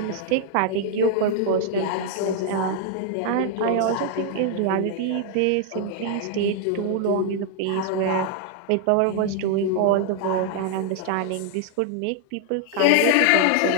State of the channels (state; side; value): different; both; correlation 0.00